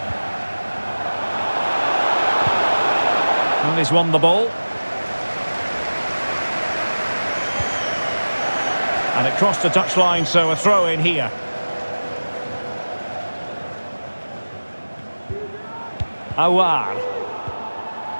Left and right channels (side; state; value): both; inverted; correlation -1.00